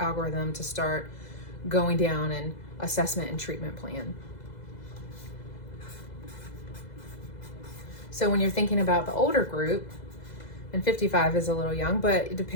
to start going down an assessment and treatment plan. So when you're thinking about the older group, and 55 is a little young, but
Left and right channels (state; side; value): late; right; 2.0 ms